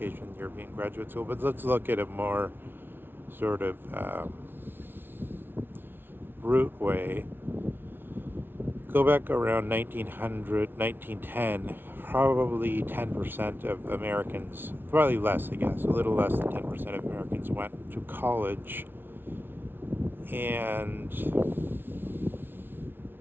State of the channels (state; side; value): late; left; 0.10 ms